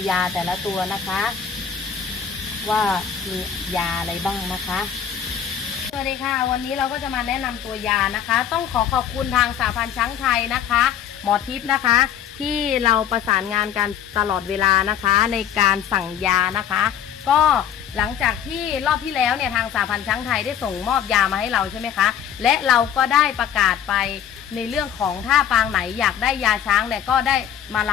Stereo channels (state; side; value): quieter; right; 8.9 dB